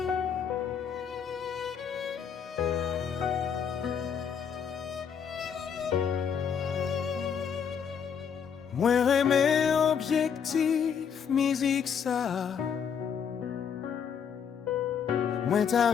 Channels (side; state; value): right; quieter; 7.3 dB